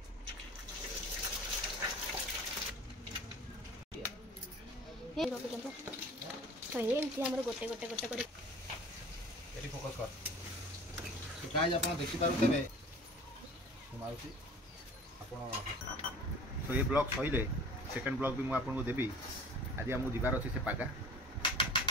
हे रोक जंप तो एंती हमर गोटे गोटे गोटे कर एटी फोकस कर तो गाइस आपण देखि पारु तबे माउसी आपण तो ये ब्लॉग सहिले सेकंड ब्लॉग भी मु आपण को देबी आज हम दिबार अछि से पागा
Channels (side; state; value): both; normal; correlation 0.45